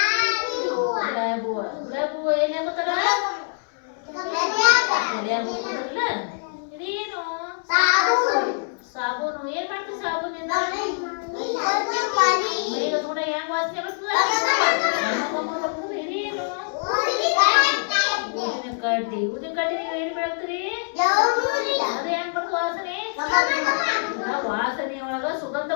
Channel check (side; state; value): right; silent; digital silence